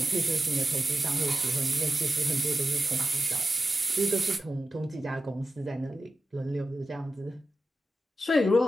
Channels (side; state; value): both; normal; correlation 0.91